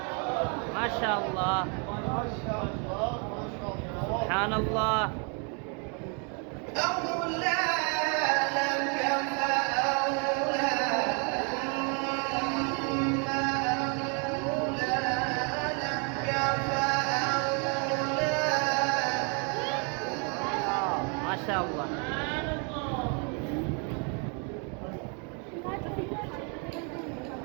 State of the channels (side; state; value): left; quieter; 36.7 dB